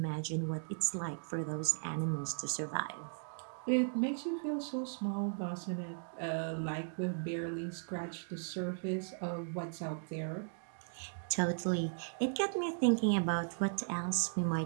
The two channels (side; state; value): left; silent; digital silence